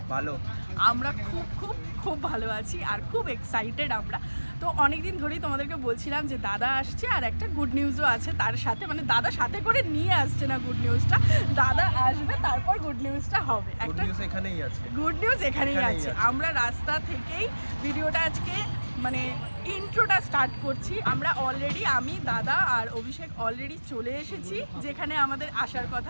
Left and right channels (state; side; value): inverted; both; correlation -1.00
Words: ভালো। আমরা খুব খুব খুব ভালো আছি আর খুব এক্সাইটেড আমরা। তো অনেকদিন ধরেই তোমাদেরকে বলছিলাম যে দাদা আসছে আর একটা গুড নিউজও আছে তার সাথে, মানে দাদা সাথে করে নিয়ে আসছে না গুড নিউজটা, দাদা আসবে তারপর গুড নিউজটা হবে। একটা গুড নিউজ এখানেই আছে, গুড নিউজ এখানেই আছে। আমরা রাস্তা থেকেই ভিডিওটা আজকে মানে ইন্ট্রোটা স্টার্ট করছি। আমরা অলরেডি, আমি, দাদা আর অভিষেক অলরেডি চলে এসেছি যেখানে আমাদের আসার